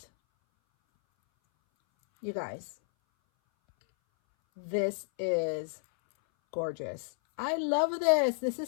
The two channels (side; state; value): right; silent; 57 dB below the other